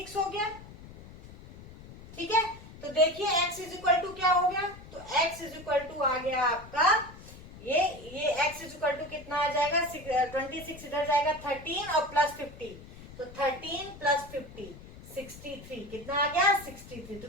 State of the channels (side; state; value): left; noise; rumble, 17 dB below the sound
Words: हो गया, ठीक है। तो देखिए x इज इक्वल टू क्या हो गया, तो x इज इक्वल टू आ गया आपका ये x इज इक्वल टू कितना आ जाएगा, 26 इधर जाएगा 13 और प्लस 50, तो 13 प्लस 50 63, कितना आ गया 63। तो